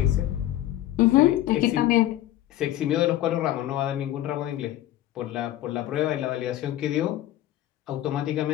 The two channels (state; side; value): quieter; right; 14.0 dB